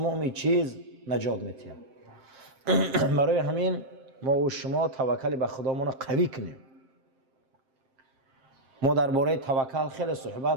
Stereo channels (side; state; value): left; late; 7.5 ms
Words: چیز نجات می‌دهد. برای همین ما و شما توکل به خدامون قوی کنیم. ما درباره توکل خیلی